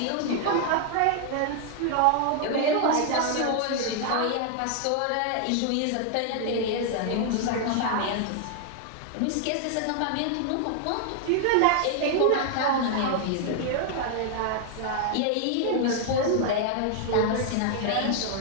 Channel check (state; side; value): different; both; correlation 0.00